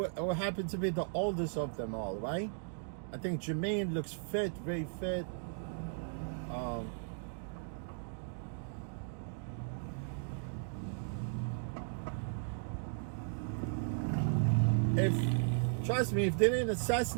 will happen to be the oldest of them all, right? I think Jermaine looks fit, very fit. Trust me, if they didn't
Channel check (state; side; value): silent; left; digital silence